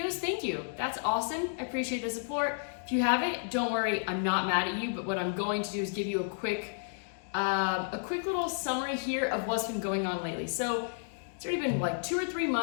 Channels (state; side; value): silent; right; digital silence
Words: thank you. That's awesome. I appreciate the support. If you haven't, don't worry, I'm not mad at you, but what I'm going to do is give you a quick little summary here of what's been going on lately. So it's already been like 2 or 3